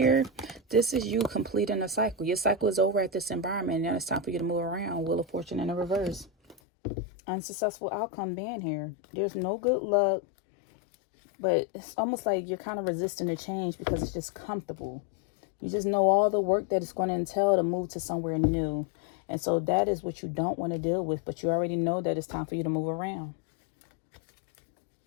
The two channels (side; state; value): right; drops out; at 6.6 s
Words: this is you completing a cycle. Your cycle is over at this environment. Now it's time for you to move around. Wheel of Fortune in the reverse. Unsuccessful outcome being here. There's no good luck. But it's almost like you're kind of resisting the change because it's just comfortable. You just know all the work that it's going to entail to move to somewhere new. And so that is what you don't want to deal with. But you already know that it's time for you to move around.